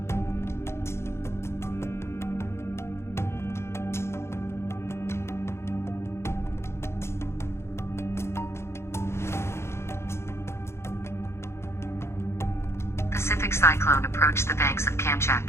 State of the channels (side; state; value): right; late; 0.13 ms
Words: Pacific cyclone approached the banks of